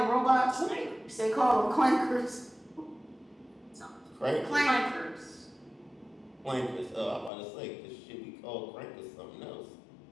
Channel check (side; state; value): right; drops out; at 7.3 s